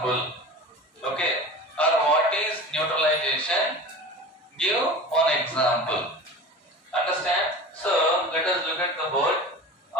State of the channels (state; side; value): normal; both; correlation 0.35